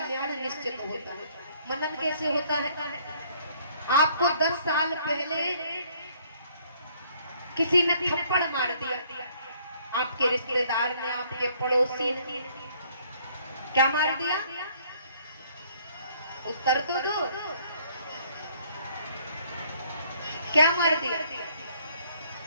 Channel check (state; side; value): inverted; both; correlation -0.62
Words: निश्चित होता है। मनन कैसे होता है? आपको 10 साल पहले किसी ने थप्पड़ मार दिया, आपके रिश्तेदार ने, आपके पड़ोसी ने क्या मार दिया? उत्तर तो दो, क्या मार दिया?